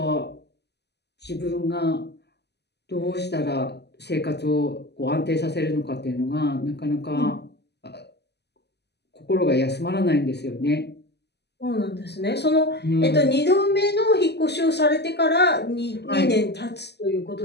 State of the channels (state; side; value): late; right; 0.49 ms